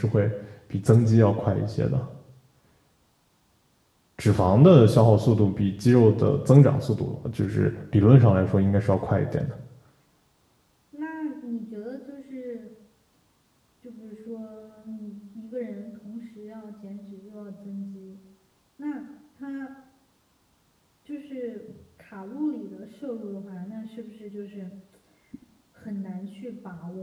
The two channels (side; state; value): both; identical; correlation 1.00